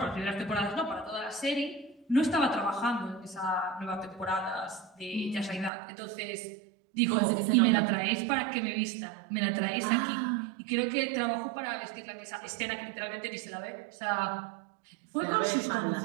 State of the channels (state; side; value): drops out; left; at 5.7 s